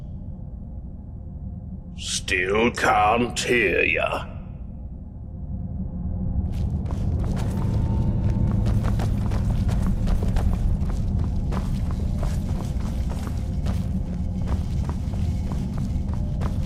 Still can't hear ya.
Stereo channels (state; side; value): identical; both; correlation 1.00